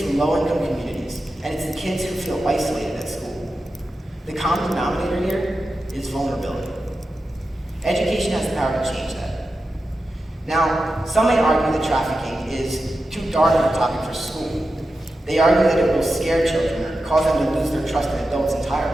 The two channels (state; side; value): normal; both; correlation 0.91